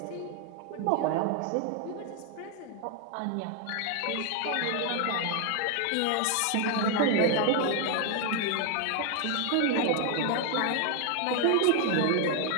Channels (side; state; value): both; different; correlation 0.00